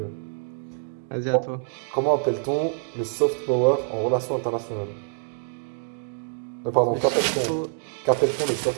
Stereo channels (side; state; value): left; silent; digital silence